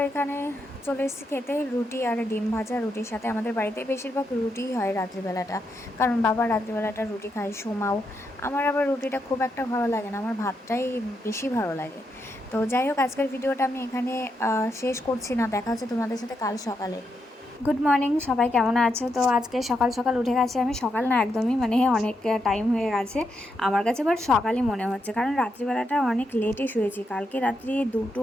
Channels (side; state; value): both; normal; correlation 0.82